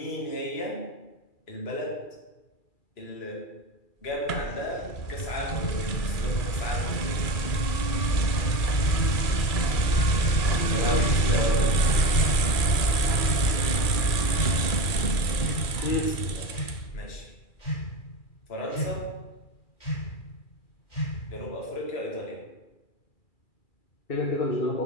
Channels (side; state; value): right; late; 2.4 ms